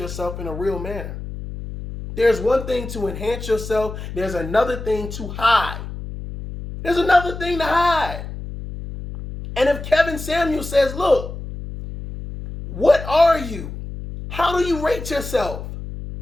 in a real manner? There's one thing to enhance yourself. There's another thing to hide. There's another thing to hide. And if Kevin Samuels says, look, what are you? How do you rate yourself?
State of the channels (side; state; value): left; noise; hum, 9 dB below the sound